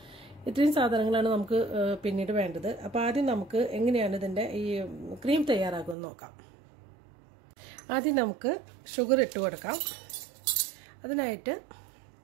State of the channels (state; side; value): drops out; left; at 6.0 s